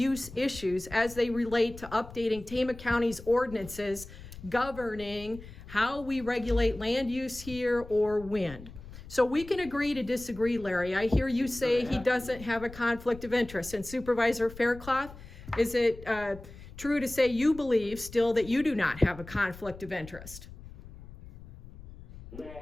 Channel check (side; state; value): left; noise; rumble, 16 dB below the sound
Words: issues as they relate to updating Tama County's ordinances governing how we regulate land use here or wind. So we can agree to disagree, Larry. I hear you say he doesn't have a conflict of interest. And Supervisor Faircloth, is it true to say you believe still that you do not have a conflict of interest? No,